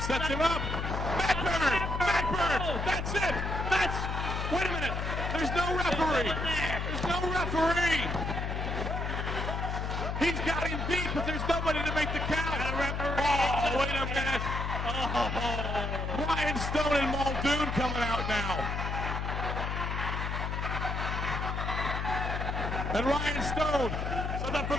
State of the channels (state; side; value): noise; left; hum, 2 dB below the sound